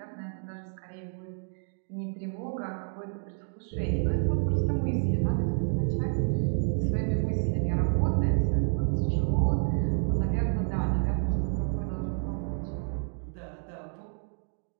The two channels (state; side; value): silent; left; 58 dB below the other